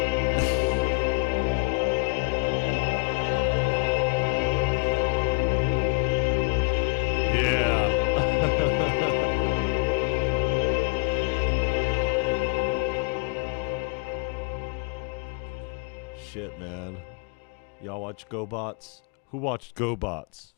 Yeah. Shit, man. Y'all watch GoBots? Who watched GoBots?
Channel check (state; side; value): quieter; right; 35.9 dB